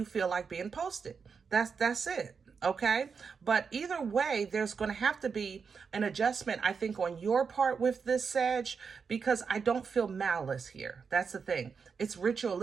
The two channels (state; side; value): quieter; left; 5.7 dB